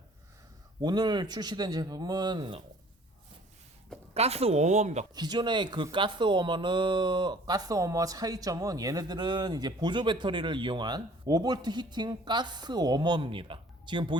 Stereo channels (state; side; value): normal; both; correlation 0.52